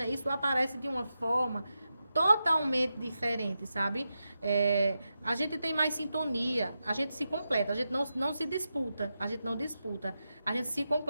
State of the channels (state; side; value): inverted; both; correlation -0.89